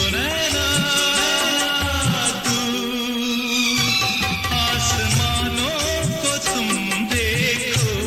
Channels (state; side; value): identical; both; correlation 1.00